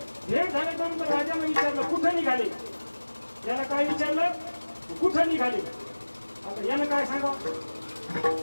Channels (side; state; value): both; inverted; correlation -1.00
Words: भेट झाल्यानंतर राजाने विचारलं कुठं निघाले. याला काय विचारलं कुठं निघाले. आता यानं काय सांगावं